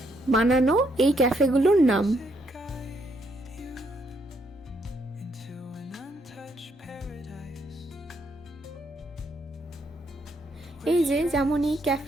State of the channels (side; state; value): both; normal; correlation 0.73